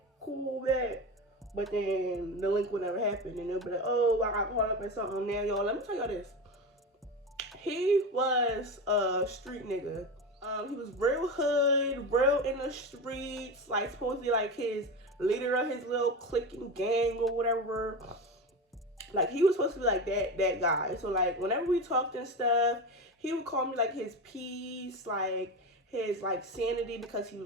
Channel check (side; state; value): both; normal; correlation 0.23